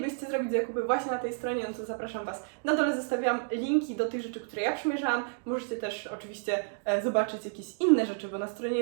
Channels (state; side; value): silent; left; digital silence